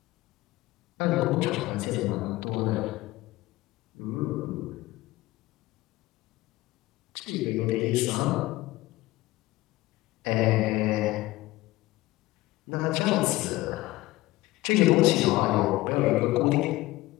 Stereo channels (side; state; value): right; quieter; 18.7 dB